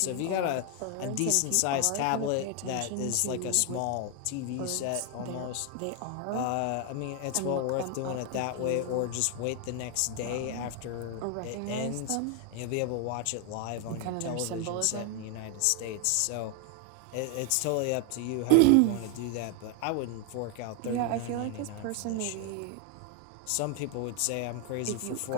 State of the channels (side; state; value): both; different; correlation 0.01